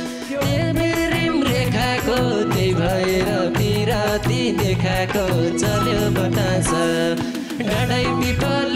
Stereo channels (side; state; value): both; identical; correlation 1.00